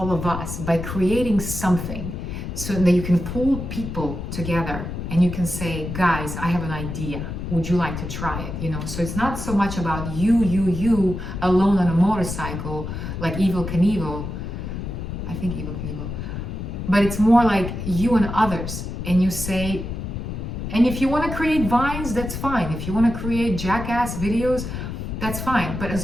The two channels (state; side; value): noise; left; rumble, 6 dB below the sound